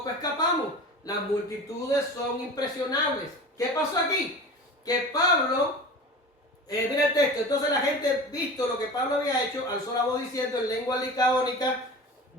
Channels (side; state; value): both; normal; correlation 0.34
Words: escapamos. Las multitudes son impresionables. ¿Qué pasó aquí? Que Pablo, mira el texto, entonces la gente, visto lo que Pablo había hecho, alzó la voz diciendo en lengua licaónica,